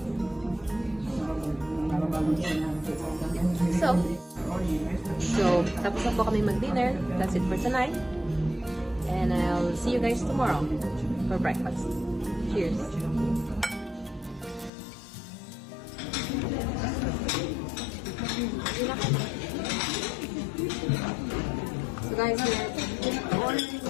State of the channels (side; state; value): right; drops out; at 14.7 s